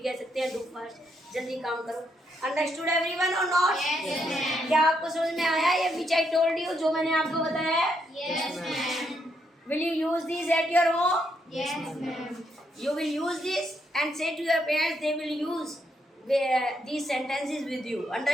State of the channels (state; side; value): normal; both; correlation 0.77